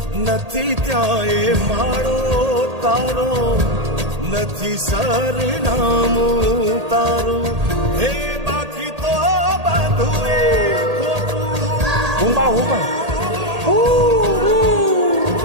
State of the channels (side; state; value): left; late; 1.8 ms